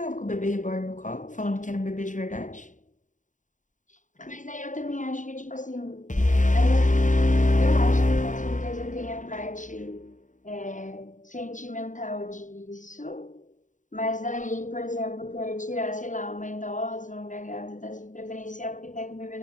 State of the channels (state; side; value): late; right; 0.37 ms